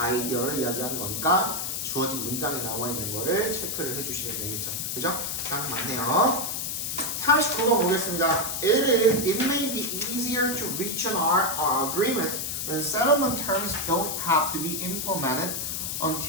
이야기하는 거니까 주어진 문장에 나와 있는 거를 체크를 해주시면 되겠죠. 그죠? 딱 맞네요. 39번 보겠습니다. It may be easier to reach an agreement when settlement terms don't have to be implemented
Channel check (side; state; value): left; noise; hiss, 2 dB below the sound